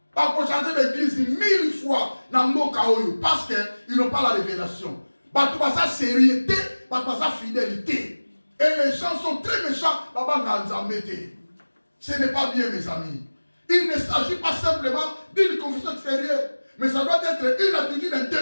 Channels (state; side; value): inverted; both; correlation -1.00